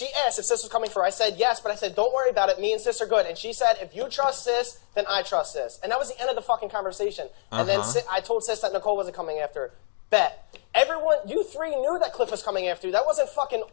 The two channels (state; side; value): silent; right; digital silence